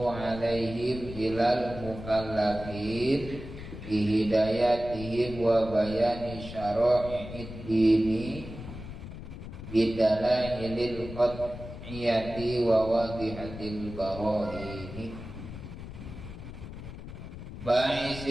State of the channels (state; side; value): noise; left; rumble, 11 dB below the sound